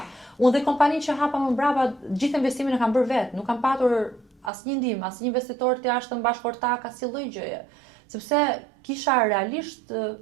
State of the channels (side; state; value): left; drops out; at 4.5 s